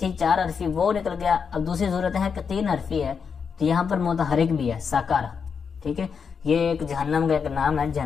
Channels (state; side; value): quieter; right; 6.2 dB